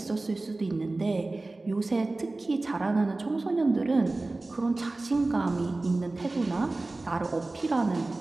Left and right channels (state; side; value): quieter; left; 3.1 dB